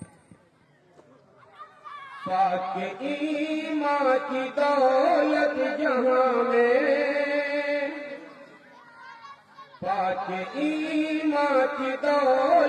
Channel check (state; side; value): identical; both; correlation 1.00